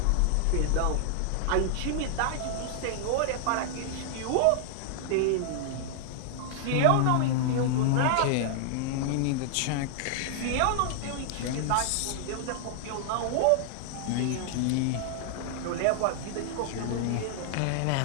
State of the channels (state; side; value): different; both; correlation 0.00